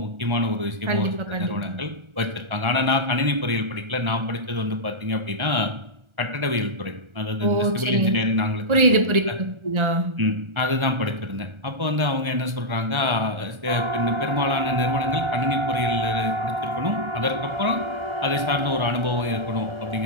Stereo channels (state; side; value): late; left; 1.3 ms